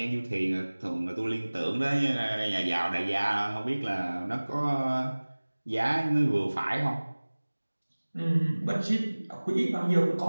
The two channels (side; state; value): both; inverted; correlation -1.00